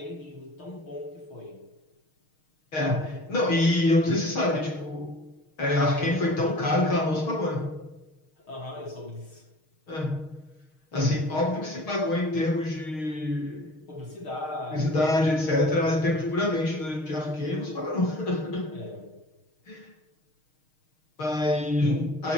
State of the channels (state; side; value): late; right; 6.4 ms